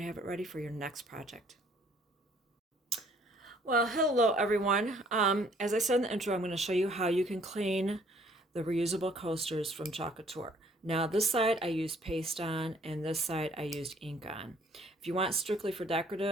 have it ready for your next project. Well, hello everyone. As I said in the intro, I'm going to show you how you can clean the reusable coasters from Chalk Couture. Now this side I used paste on and this side I used ink on. If you want strictly for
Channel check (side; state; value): both; normal; correlation 0.60